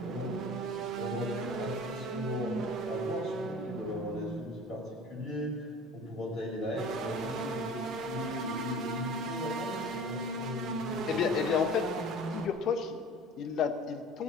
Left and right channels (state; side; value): normal; both; correlation 0.41